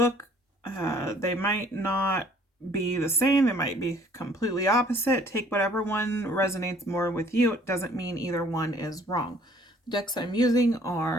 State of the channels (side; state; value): both; normal; correlation 0.57